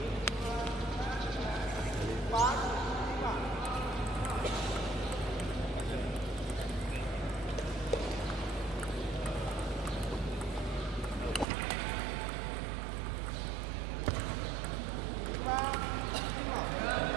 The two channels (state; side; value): drops out; left; at 11.5 s